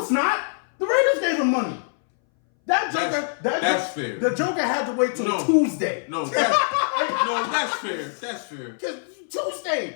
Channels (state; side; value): silent; right; 61 dB below the other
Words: it's not. The Raiders gave him money. That's fair. The Joker had to wait till Tuesday. No, that's fair. That's fair. Tuesday.